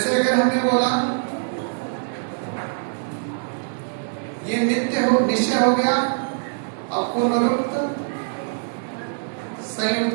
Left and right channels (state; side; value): silent; left; digital silence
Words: अगर हमने बोला ये नित्य हो, निश्चय हो गया, अब पुनरुक्त